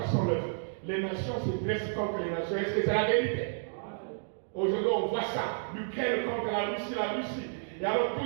69. Les nations se dressent contre les nations. Est-ce que c'est la vérité? Aujourd'hui, on voit ça. L'Ukraine contre la Russie. Et alors, tous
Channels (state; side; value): silent; left; digital silence